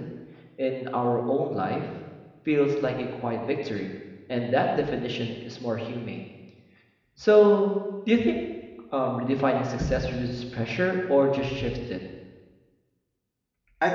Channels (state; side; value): identical; both; correlation 1.00